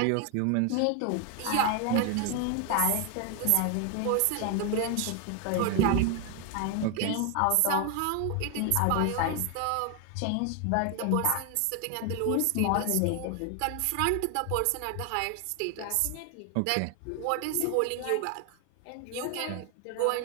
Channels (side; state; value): both; different; correlation 0.01